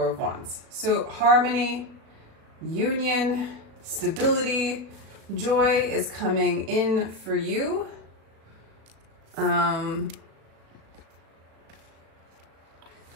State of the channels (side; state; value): left; late; 36 ms